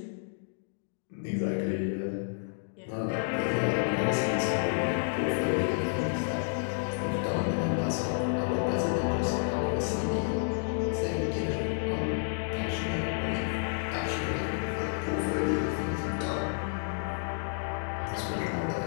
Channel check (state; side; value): silent; right; digital silence